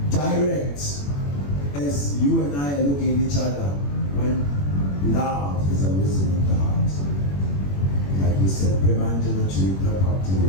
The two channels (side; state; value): right; late; 21 ms